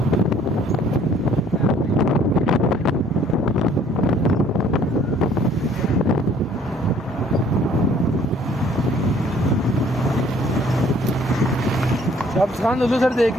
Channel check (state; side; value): normal; both; correlation 0.58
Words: अब खान लुलुसर देख